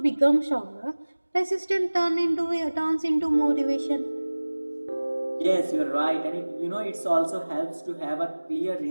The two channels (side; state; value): both; inverted; correlation -1.00